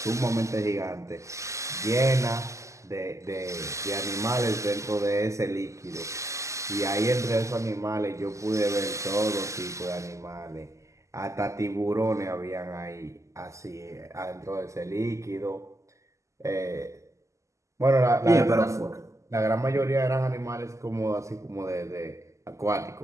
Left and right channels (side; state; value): left; late; 0.15 ms